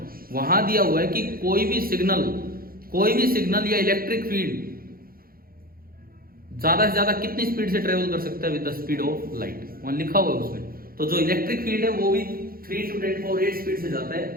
वहां दिया हुआ है कि कोई भी सिग्नल या इलेक्ट्रिक फील्ड ज्यादा से ज्यादा कितनी स्पीड से ट्रेवल कर सकता है with the speed of light, वहां लिखा हुआ है उसमें। तो जो इलेक्ट्रिक फील्ड है वो भी 3 to 10⁸ स्पीड से जाता है।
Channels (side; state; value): left; late; 0.43 ms